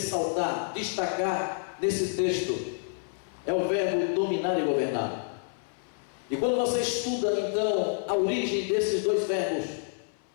destacar nesse texto, é o verbo dominar e governar. E quando você estuda então a origem desses dois verbos,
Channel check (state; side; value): silent; right; 59 dB below the other